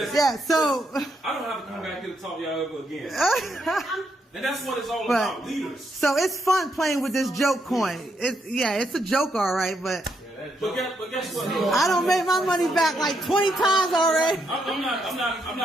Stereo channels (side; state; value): both; normal; correlation 0.78